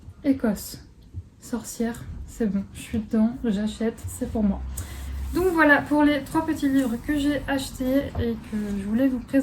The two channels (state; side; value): identical; both; correlation 1.00